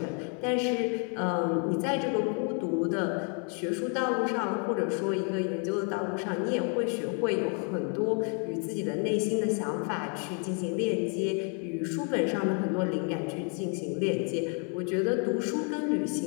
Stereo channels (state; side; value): quieter; right; 39.8 dB